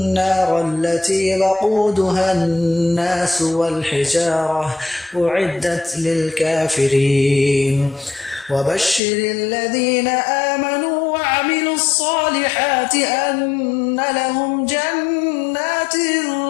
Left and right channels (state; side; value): drops out; right; at 9.0 s